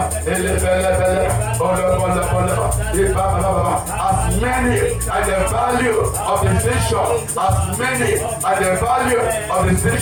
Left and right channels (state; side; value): identical; both; correlation 1.00